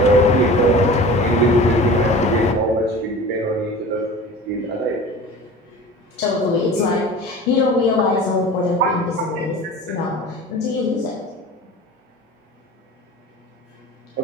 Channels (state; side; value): normal; both; correlation 0.38